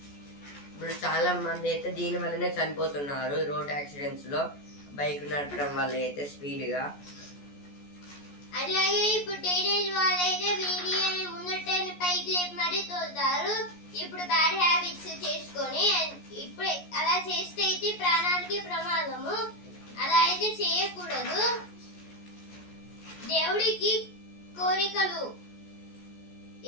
ఇప్పుడు చాలా మంది అయితే దీని వల్లనే చనిపోతున్నారు రోడ్ యాక్సిడెంట్స్ లో, బైక్ నడపడం వల్ల అయితే స్పీడ్ గా. అలాగే ఇప్పుడు టీనేజ్ వాళ్ళైతే వీడియోని ముందటని పైకి లేపి మరీ తోలుతారు. ఇప్పుడు బ్యాడ్ హ్యాబిట్స్ చేసుకొని ఇప్పుడు అలా చేస్తే అయితే ప్రాణానికి ప్రమాదము. అలా అయితే చేయకూడదు. దేవుడికి కోరికలు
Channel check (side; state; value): right; late; 14 ms